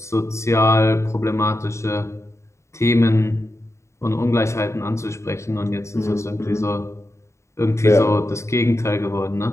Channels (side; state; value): right; late; 0.14 ms